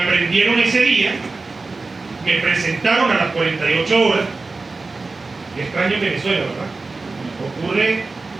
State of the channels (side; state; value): left; quieter; 3.7 dB